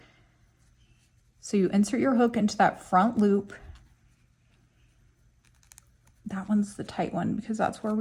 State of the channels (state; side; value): identical; both; correlation 1.00